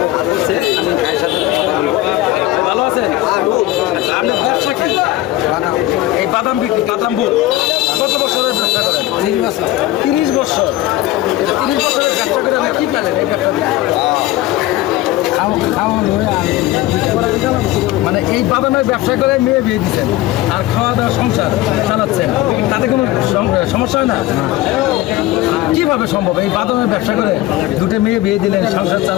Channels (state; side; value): quieter; right; 16.0 dB